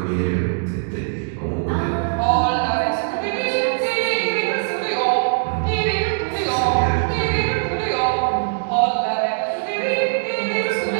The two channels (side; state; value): left; silent; digital silence